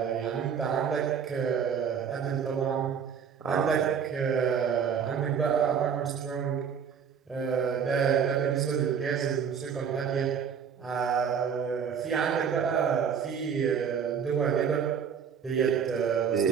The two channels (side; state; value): left; quieter; 7.2 dB